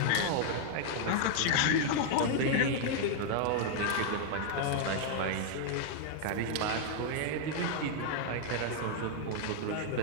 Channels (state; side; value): different; both; correlation 0.00